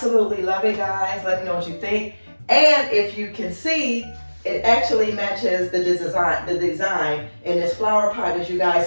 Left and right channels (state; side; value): inverted; both; correlation -1.00